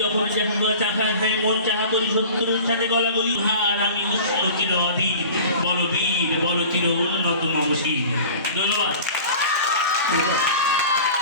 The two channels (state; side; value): inverted; both; correlation -0.40